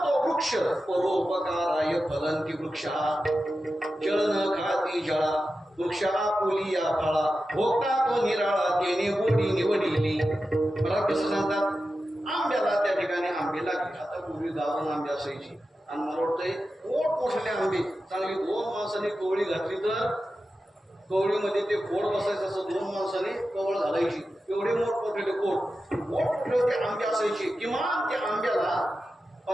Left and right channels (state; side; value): normal; both; correlation 0.92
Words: वृक्ष परोपकाराय फलंती वृक्षा जळ न खाती जळा वृक्षा पोली या फळा भोगता तो निराळा तेने गोडी निवडिली मला कसं सांगतात आंब्याला त्या ठिकाणी आंबे लागले आता पूर्वी गावाला आंबे असायची आणि मला वाटतंय मोठमोठे आंबे चांगली 2 माणसांनी कवळी घातली तर कवळीमध्ये ते खोड बसायचं असं 2 माणसांनी कवळ घालायची एवढे मोठमोठे मोठमोठे ते आंबे असायचे किमान त्या आंब्याला